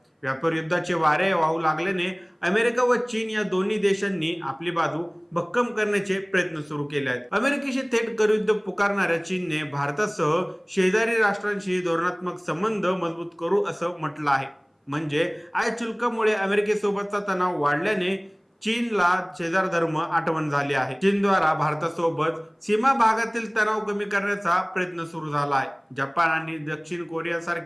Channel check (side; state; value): both; identical; correlation 1.00